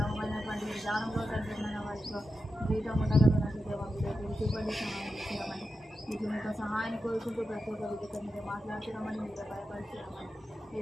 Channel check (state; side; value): normal; both; correlation 0.89